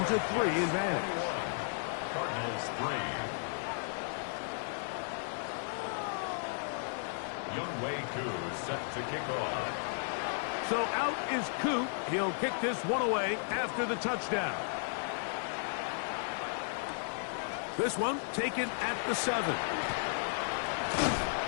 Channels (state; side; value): silent; right; 55 dB below the other